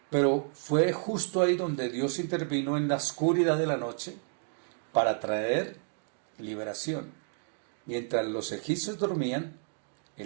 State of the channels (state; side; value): silent; left; 57 dB below the other